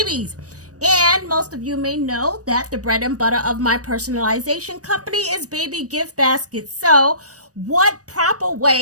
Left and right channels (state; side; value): late; left; 0.66 ms